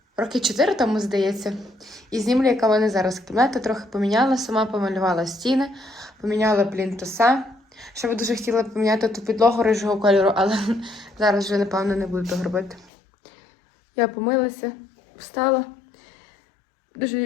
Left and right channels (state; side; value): drops out; right; at 12.9 s